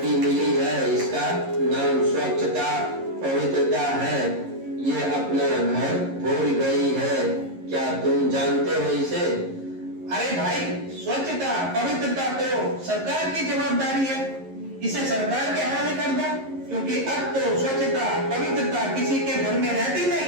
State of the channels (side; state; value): left; late; 11 ms